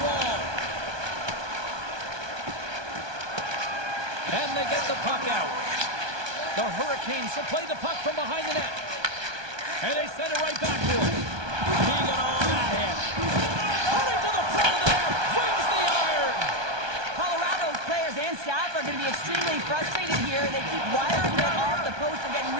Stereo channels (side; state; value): left; late; 1.2 ms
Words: wall. And they get the puck out. The Hurricanes will play the puck from behind the net. And they send it right back to him. Keegan on that hit. Coming to the front of the net. Wins the iron. Colorado's players and staff are going to be extremely frustrated here. They keep wiring it off the post and getting